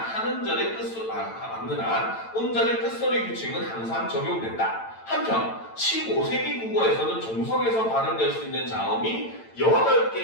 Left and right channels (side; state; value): right; late; 8.9 ms